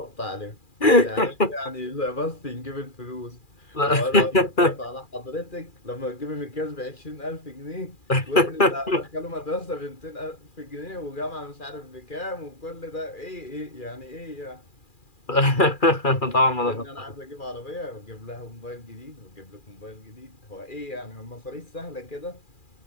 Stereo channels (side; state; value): right; late; 2.4 ms